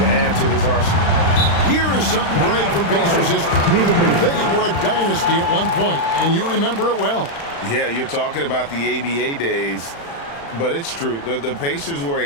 add to his arsenal. Here is something great from Pacers history. They were a dynasty at one point, and you remember it well. Yeah, you're talking about the ABA days, but it's true. The Pacers were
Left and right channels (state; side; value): late; right; 35 ms